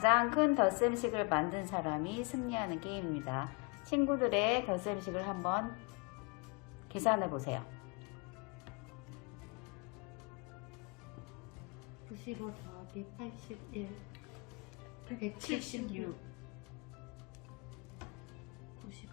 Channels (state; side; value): quieter; right; 30.8 dB